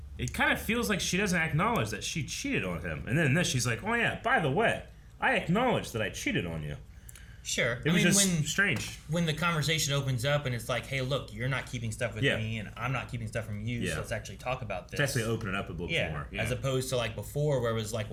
it kind of feels like she doesn't acknowledge that she cheated on him. And then in this, she's like, oh yeah, by the way, I acknowledge that I cheated on you. Sure. It was just strange. When the conversation opens up and it's like, hey, look, you're not keeping stuff with me and I'm not keeping stuff from you, so let's actually talk about this. Let's actually open it up a little more. Yeah. As opposed to like before where it was like,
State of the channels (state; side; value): identical; both; correlation 1.00